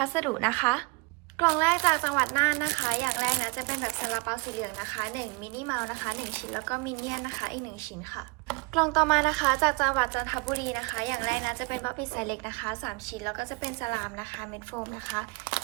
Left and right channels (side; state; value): left; quieter; 28.3 dB